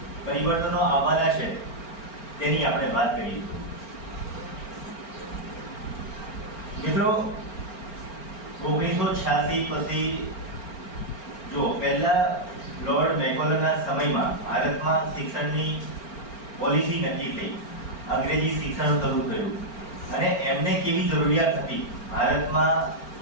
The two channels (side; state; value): right; late; 4.4 ms